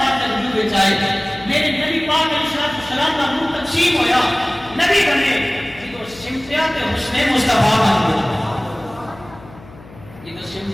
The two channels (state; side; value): noise; left; hum, 20 dB below the sound